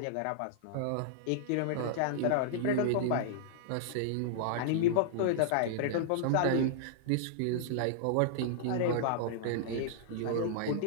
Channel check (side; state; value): both; different; correlation -0.01